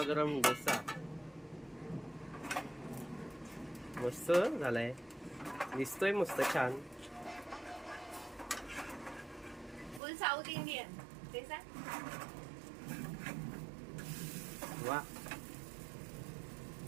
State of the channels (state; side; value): drops out; left; at 10.0 s